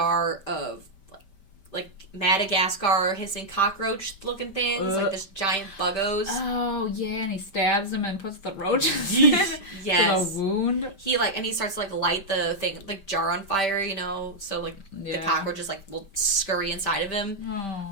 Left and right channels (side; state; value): right; late; 5.1 ms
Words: of, like Madagascar hissing cockroach looking things, like this giant buggos. Oh, yeah, and he stabs him and puts the roaches in yes. the wound. He, like, and he starts to, like, light the thing, like, jar on fire, you know, so, like, the cockroaches, like, will scurry inside of him.